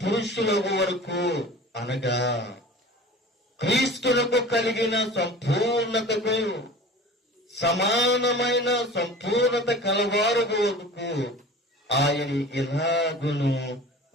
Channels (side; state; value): both; normal; correlation 0.40